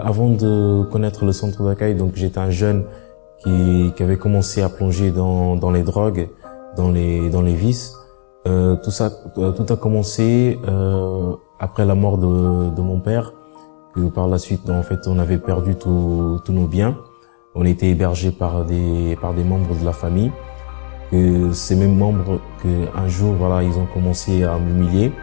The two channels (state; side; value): silent; right; digital silence